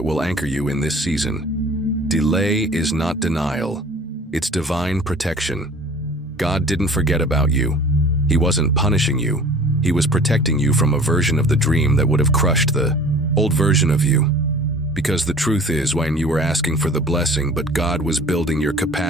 will anchor you in this season. Delay is not denial. It's divine protection. God didn't forget about you. He wasn't punishing you. He was protecting you from a version of the dream that would have crushed the old version of you. Because the truth is, when you were asking for the blessing, but God was building your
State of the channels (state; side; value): normal; both; correlation 0.45